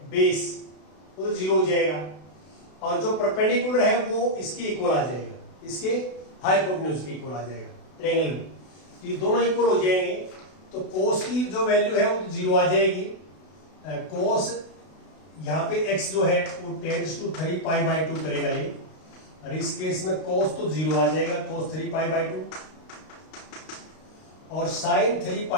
बेस वो तो 0 हो जाएगा और जो परपेंडिकुलर है वो इसके इक्वल आ जाएगा, इसके हाइपोटेन्यूज के इक्वल आ जाएगा ट्रायंगल में। तो ये दोनों इक्वल हो जाएंगे, तो कोस की जो वैल्यू है वो तो 0 आ जाएगी। कोस यहाँ पे x जो है वो टेंड्स टू 3π/2 करेगा ये, और इस केस में कोस तो 0 आ जाएगा, कोस 3π/2, और साइन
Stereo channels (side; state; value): right; late; 32 ms